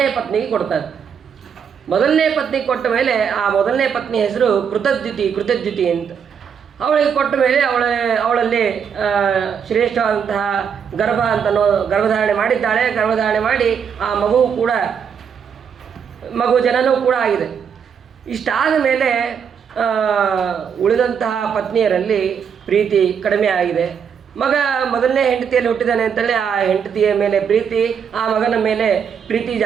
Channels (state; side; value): quieter; left; 7.2 dB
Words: ಪತ್ನಿಗೆ ಕೊಡ್ತಾರೆ. ಮೊದಲನೇ ಪತ್ನಿಗೆ ಕೊಟ್ಟ ಮೇಲೆ ಆ ಮೊದಲನೇ ಪತ್ನಿ ಹೆಸರು ಕೃತದ್ಯುತಿ ಅಂತ. ಅವಳಿಗೆ ಕೊಟ್ಟ ಮೇಲೆ ಅವಳಲ್ಲಿ ಶ್ರೇಷ್ಠವಾದಂತಹ ಗರ್ಭಧಾರಣೆ ಮಾಡಿದ್ದಾಳೆ. ಗರ್ಭಧಾರಣೆ ಮಾಡಿ ಆ ಮಗು ಜನನೂ ಕೂಡ ಆಗಿದೆ. ಇಷ್ಟಾದ ಮೇಲೆ ಉಳಿದಂತಹ ಪತ್ನಿಯರಲ್ಲಿ ಪ್ರೀತಿ ಕಡಿಮೆ ಆಗಿದೆ. ಮಗ ಮೊದಲನೇ ಹೆಂಡತಿಯಲ್ಲಿ ಹುಟ್ಟಿದ್ದಾನೆ ಅಂತೇಳಿ ಆ ಹೆಂಡತಿಯ ಮೇಲೆ ಪ್ರೀತಿ, ಆ ಮಗನ ಮೇಲೆ ಪ್ರೀತಿ